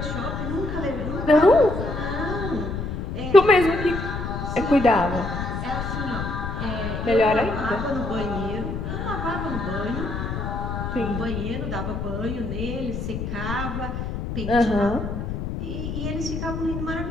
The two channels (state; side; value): noise; left; rumble, 4 dB below the sound